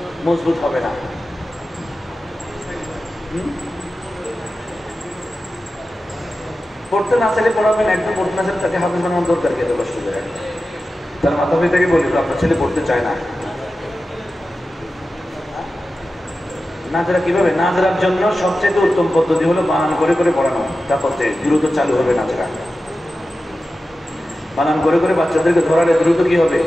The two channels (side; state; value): both; normal; correlation 0.93